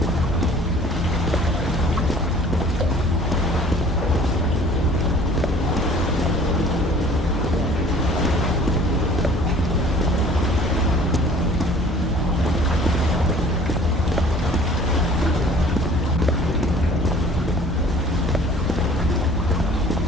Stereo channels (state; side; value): normal; both; correlation 0.50